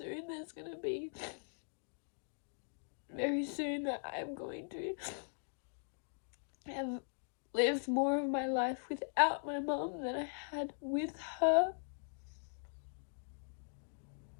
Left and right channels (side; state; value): right; silent; digital silence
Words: there's going to be, very soon, that I'm going to have lived more of my life without my mum than I had with her.